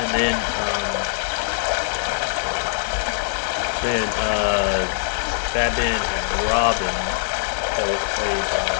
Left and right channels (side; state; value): right; silent; 64 dB below the other